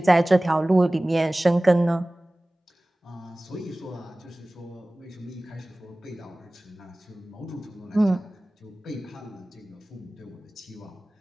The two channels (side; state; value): both; normal; correlation 0.98